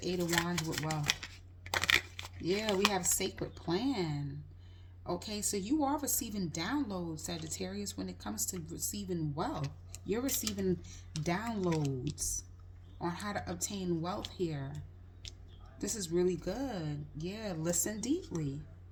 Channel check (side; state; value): both; identical; correlation 1.00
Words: Eight of Wands with wealth? Yeah, we have sacred plan. Okay, so you are receiving downloads, Sagittarius, when it comes to receiving wealth. You're receiving downloads on how to obtain wealth here. This is really good. Yeah, listen deeply.